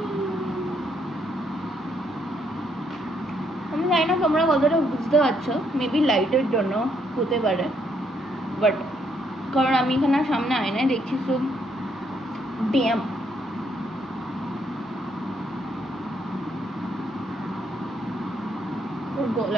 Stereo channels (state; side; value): normal; both; correlation 0.73